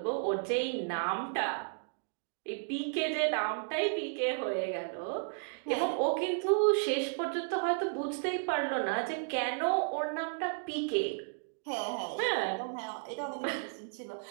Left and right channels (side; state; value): left; silent; digital silence